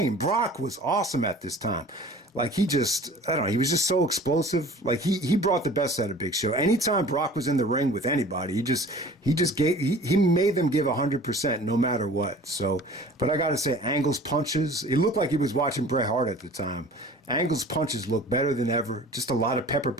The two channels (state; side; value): normal; both; correlation 0.45